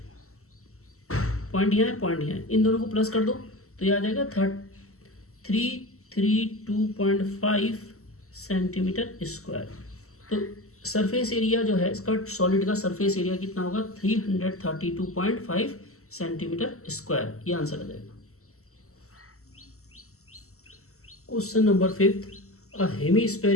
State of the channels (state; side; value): late; right; 0.63 ms